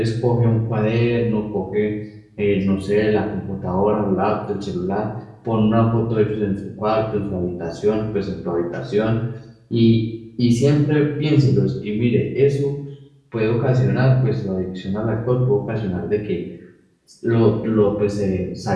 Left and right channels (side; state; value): both; identical; correlation 1.00